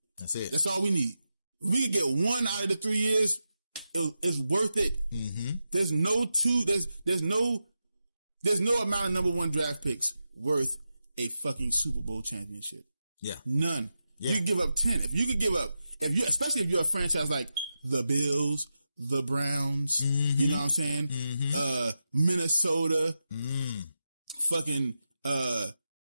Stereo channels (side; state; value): both; inverted; correlation -0.90